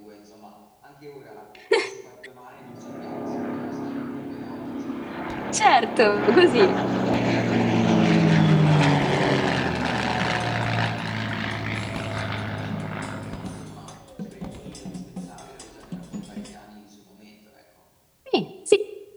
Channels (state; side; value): identical; both; correlation 1.00